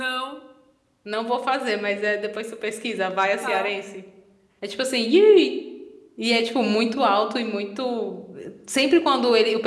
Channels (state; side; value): identical; both; correlation 1.00